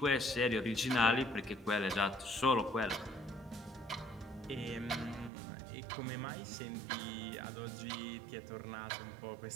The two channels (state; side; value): drops out; left; at 5.3 s